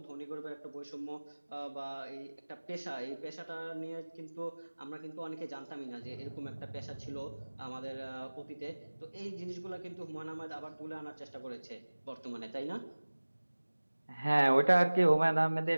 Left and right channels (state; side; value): inverted; both; correlation -1.00